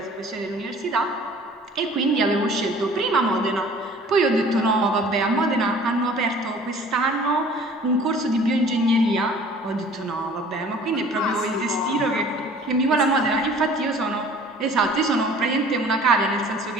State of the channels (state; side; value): normal; both; correlation 0.49